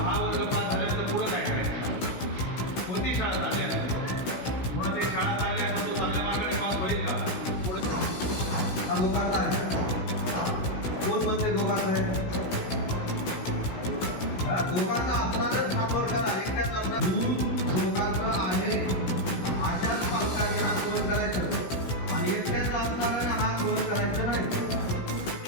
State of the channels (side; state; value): right; late; 16 ms